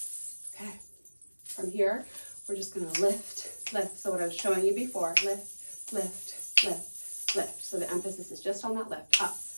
Okay. From here, we're just going to lift, lift. So what I was showing you before, lift, lift, lift, lift. So the emphasis is just on that lift. Up,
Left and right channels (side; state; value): both; inverted; correlation -1.00